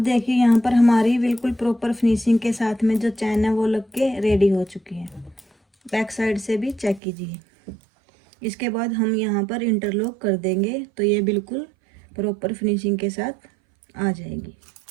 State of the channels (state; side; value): drops out; left; at 7.0 s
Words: देखिए यहाँ पर हमारी बिल्कुल प्रॉपर फिनिशिंग के साथ में जो चैन है वो लग के रेडी हो चुकी है। बैक साइड से भी चेक कीजिए। इसके बाद हम यहाँ पर इंटरलॉक कर देंगे तो ये बिल्कुल प्रॉपर फिनिशिंग के साथ आ जाएगी।